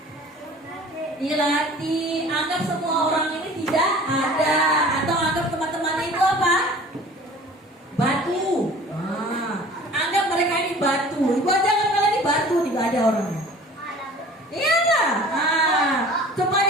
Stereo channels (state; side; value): normal; both; correlation 0.45